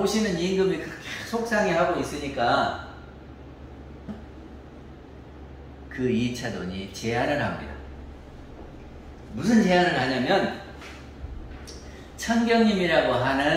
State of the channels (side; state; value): both; identical; correlation 1.00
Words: 임금이 그렇게 속상해하고 있으니까 그 2차 돈이 제안을 합니다. 무슨 제안을 하냐면 천경님이라고